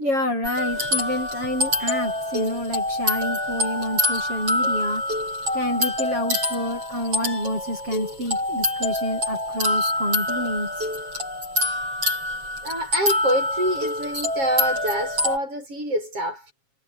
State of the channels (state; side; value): late; left; 7.3 ms